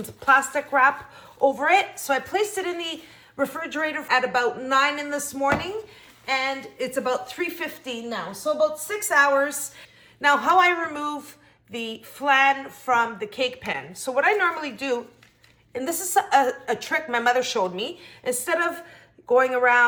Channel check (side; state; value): both; identical; correlation 1.00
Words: plastic wrap over it. So I placed it in the refrigerator at about 9 in this morning, and it's about 3:15 now. So about 6 hours. Now, how I remove the flan from the cake pan. So what I normally do, and this is a trick my mother showed me, instead of going